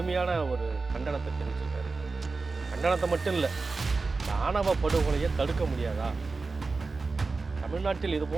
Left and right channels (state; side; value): quieter; left; 4.0 dB